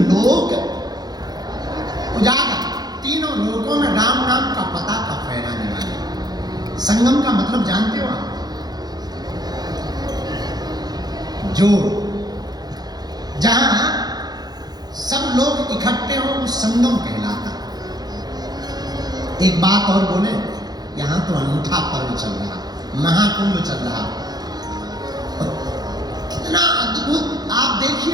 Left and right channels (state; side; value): late; left; 0.19 ms